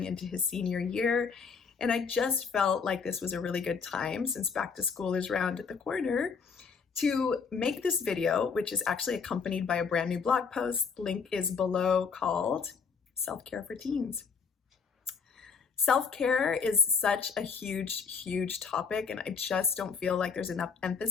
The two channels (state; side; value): quieter; right; 5.7 dB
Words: into his senior year. And I just felt like this was a really good time, since back to school is round at the corner, to make this video, which is actually accompanied by a brand new blog post. Link is below, called Self-Care for Teens. Self-care is such a huge topic, and I just don't feel like there's enough